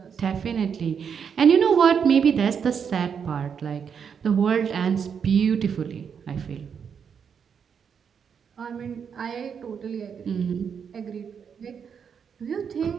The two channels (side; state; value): left; quieter; 7.0 dB